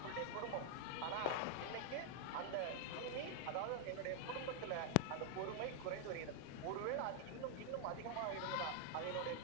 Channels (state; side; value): different; both; correlation 0.00